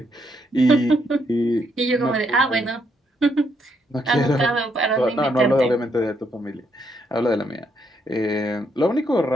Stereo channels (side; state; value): both; normal; correlation 0.75